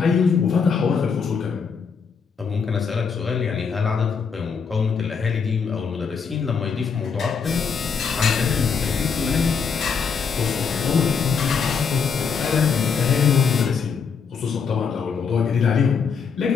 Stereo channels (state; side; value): quieter; right; 5.9 dB